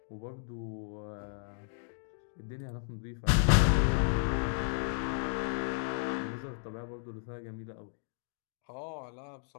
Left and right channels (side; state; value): right; silent; digital silence